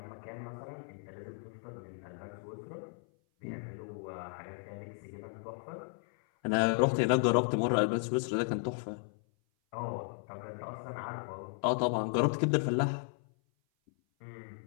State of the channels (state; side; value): silent; right; 55 dB below the other